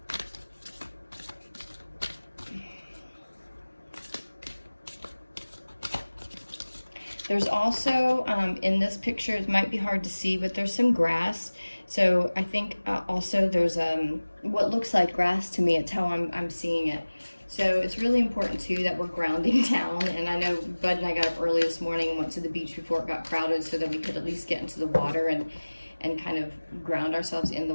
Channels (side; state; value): both; inverted; correlation -1.00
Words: There's also, in this picture, it might be hard to see, but there's some grass. So I think also there's what looks like grass to me. It's how I'm seeing it. So it's really important too that we're grounding down. And I know Bud and I got up early this morning and went to the beach before it got crowded so that we could at least get into the water and kind of ground ourselves in the